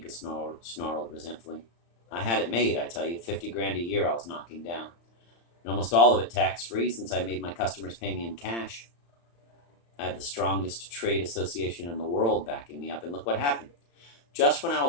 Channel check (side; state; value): right; late; 35 ms